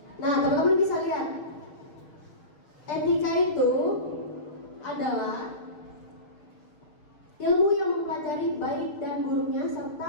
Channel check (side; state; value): right; late; 6.6 ms